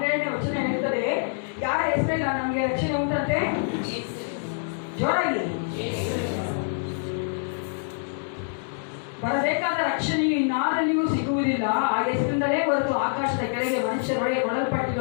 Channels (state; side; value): silent; right; digital silence